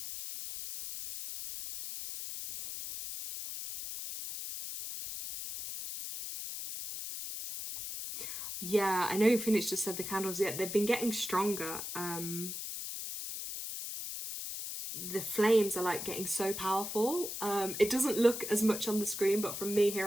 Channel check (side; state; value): left; noise; hiss, 6 dB below the sound